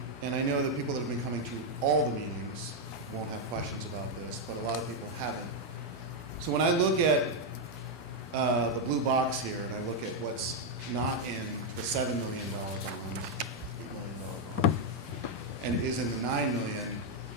and I know that people that have been coming to all the meetings won't have questions about this, but a lot of people haven't. So when I look at the blue box here, and I look at what's not in the $7 million bond, $8 million bond, and is in the $9 million,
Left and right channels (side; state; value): both; normal; correlation 0.00